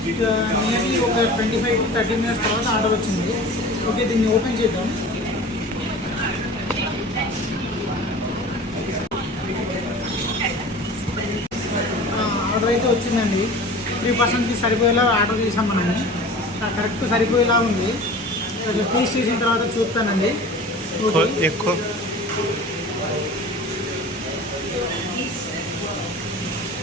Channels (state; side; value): normal; both; correlation 0.39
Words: నియర్లీ ఒక 25 to 30 మినిట్స్ తర్వాత ఆర్డర్ వచ్చింది. ఓకే, దీన్ని ఓపెన్ చేద్దాం. ఆర్డర్ అయితే వచ్చిందండి. 3%కి సరిపోయేలా ఆర్డర్ చేసాం మనము. కరెక్ట్ సరిపోయేలా ఉంది. టేస్ట్ చేసిన తర్వాత చూస్తానండి. ఎక్కువ